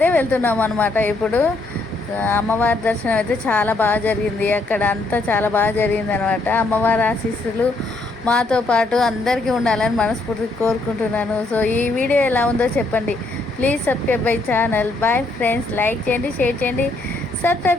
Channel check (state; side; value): quieter; right; 3.1 dB